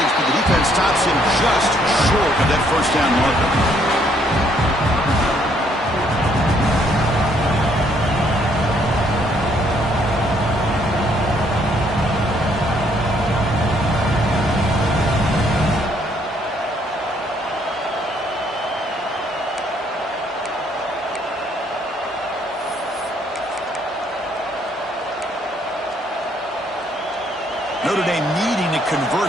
but the defense stops him just short of that first down marker. Notre Dame needing to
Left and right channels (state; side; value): normal; both; correlation 0.68